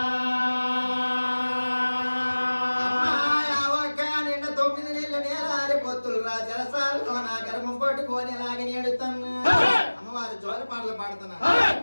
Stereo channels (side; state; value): both; inverted; correlation -1.00